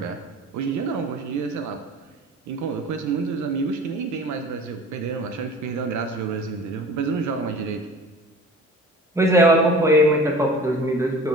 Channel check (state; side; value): normal; both; correlation 0.42